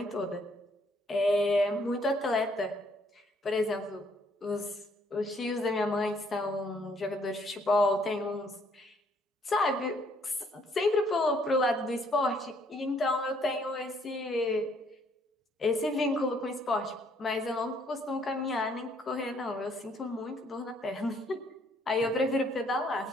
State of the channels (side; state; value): both; normal; correlation 0.66